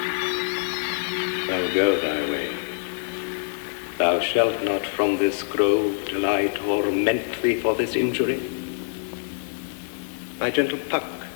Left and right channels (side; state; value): right; silent; digital silence